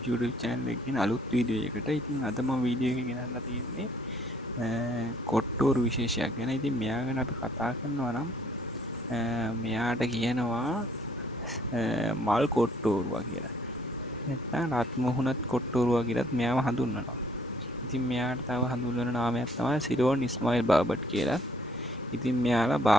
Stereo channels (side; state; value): both; normal; correlation 0.62